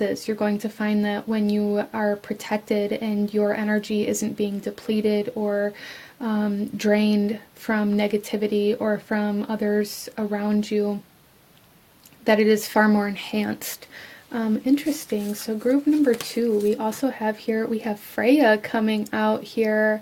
You're going to find that when you are protected and your energy isn't being depleted or drained from negativity or from others around you, that it is far more enhanced. Interesting. So group number 2, we also have here, we have Freya coming out here.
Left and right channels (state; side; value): identical; both; correlation 1.00